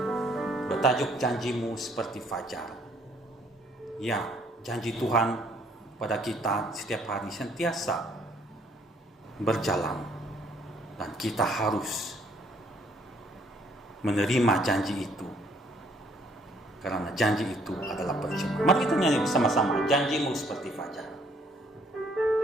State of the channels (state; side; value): normal; both; correlation 0.65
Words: bertajuk Janjimu Seperti Fajar. Ya, janji Tuhan pada kita setiap hari sentiasa berjalan dan kita harus menerima janji itu karena janji itu adalah percuma. Mari kita nyanyi bersama-sama Janjimu Seperti Fajar.